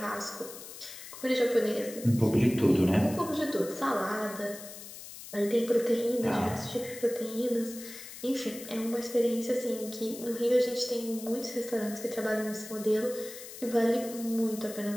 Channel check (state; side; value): noise; left; hiss, 13 dB below the sound